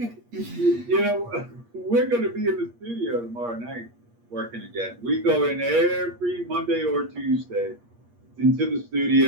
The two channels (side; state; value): left; late; 8.5 ms